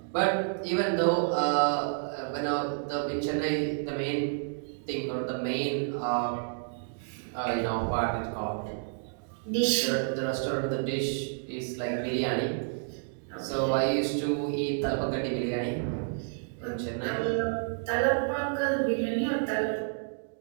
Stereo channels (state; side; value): silent; left; digital silence